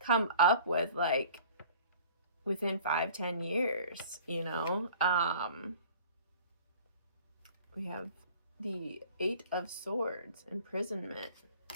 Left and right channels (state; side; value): inverted; both; correlation -0.47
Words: up with, like, within 5-10 years, you know. We have the 8 of Swords, imprisonment.